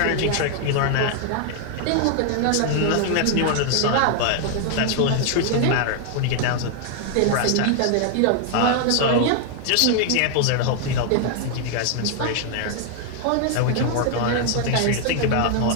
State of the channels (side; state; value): both; different; correlation 0.00